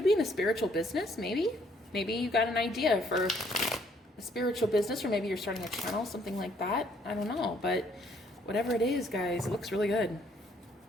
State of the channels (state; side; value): normal; both; correlation 0.66